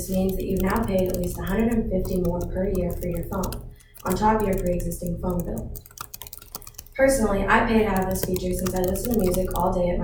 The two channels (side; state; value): both; identical; correlation 1.00